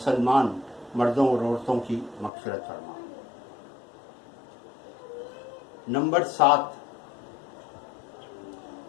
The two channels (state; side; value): drops out; right; at 2.3 s